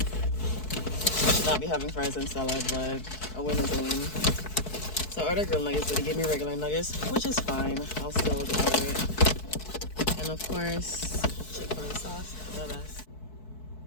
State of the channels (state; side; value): late; right; 4.6 ms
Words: I should not be having fries and salad, but a win is a win. So I ordered grilled nuggets, but he gave me regular nuggets, which is fine. I'll still order it. And of course, Chick-fil-A sauce, the best.